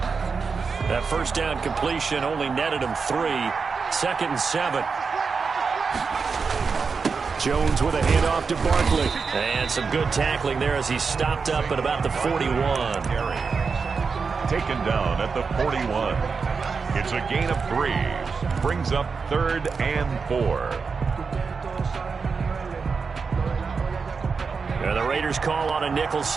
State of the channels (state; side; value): quieter; left; 5.1 dB